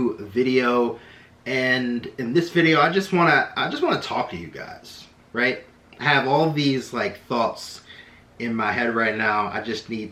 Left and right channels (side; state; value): both; identical; correlation 1.00